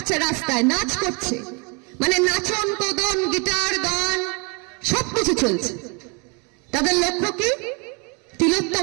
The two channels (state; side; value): quieter; left; 31.7 dB